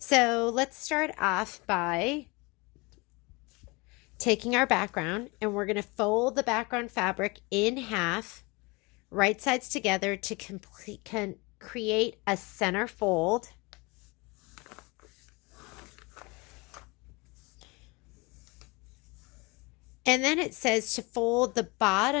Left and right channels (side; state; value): right; quieter; 26.5 dB